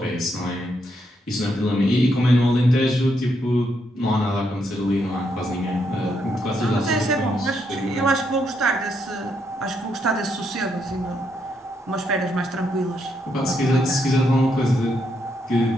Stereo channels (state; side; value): normal; both; correlation 0.77